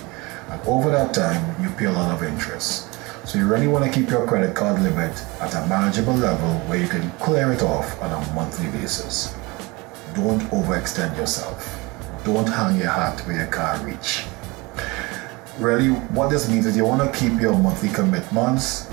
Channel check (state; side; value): quieter; left; 24.5 dB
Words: over that time, you pay a lot of interest. So you really want to keep your credit card limit at a manageable level where you can clear it off on a monthly basis. Don't overextend yourself. Don't hang your hat where you can't reach. Really, what this means is you want to keep your monthly commitments,